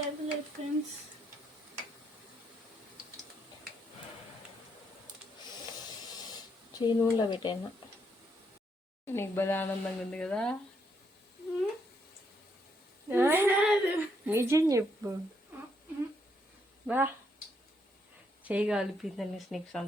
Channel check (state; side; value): normal; both; correlation 0.75